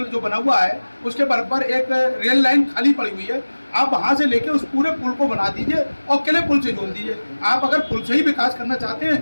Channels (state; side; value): inverted; both; correlation -1.00